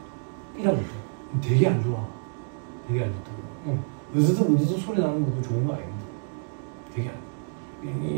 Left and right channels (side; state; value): left; silent; digital silence